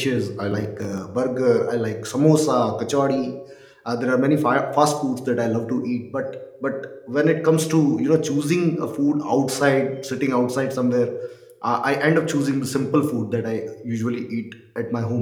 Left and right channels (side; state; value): both; identical; correlation 1.00